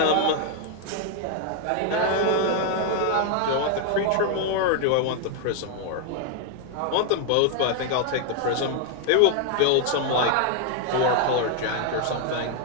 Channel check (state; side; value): different; both; correlation 0.00